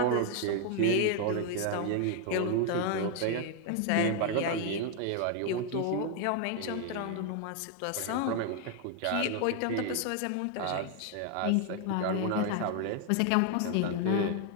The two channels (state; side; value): different; both; correlation 0.00